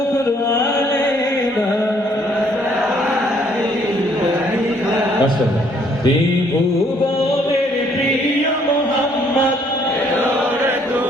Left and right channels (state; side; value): normal; both; correlation 0.65